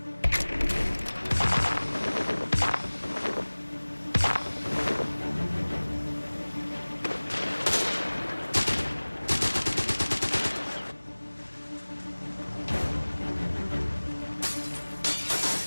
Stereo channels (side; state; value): both; inverted; correlation -1.00